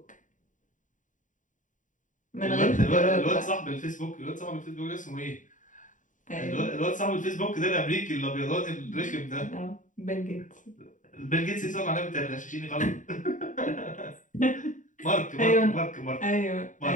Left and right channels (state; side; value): late; right; 0.37 ms